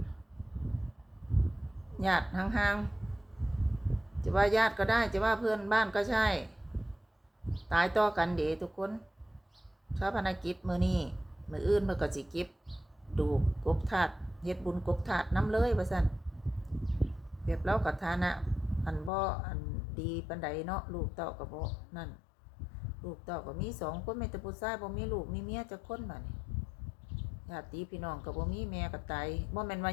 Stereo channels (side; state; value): right; drops out; at 19.1 s